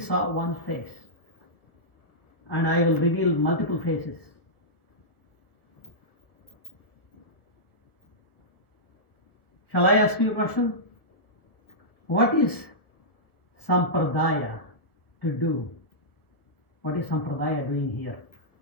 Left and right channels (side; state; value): right; late; 1.2 ms